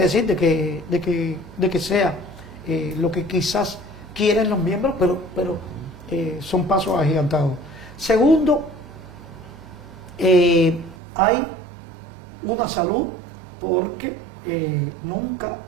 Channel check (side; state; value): left; drops out; at 11.0 s